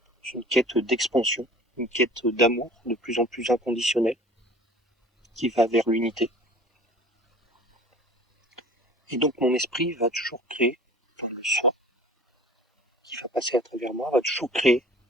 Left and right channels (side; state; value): both; normal; correlation 0.45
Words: une quête d'expansion, une quête d'amour de plus en plus inconditionnelle, qui va vers l'unité. Et donc mon esprit va toujours créer, enfin le soi, qui va passer à travers moi, va toujours créer